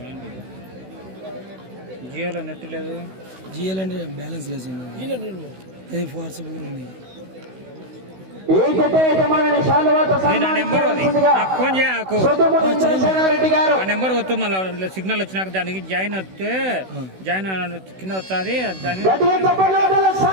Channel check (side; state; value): left; late; 16 ms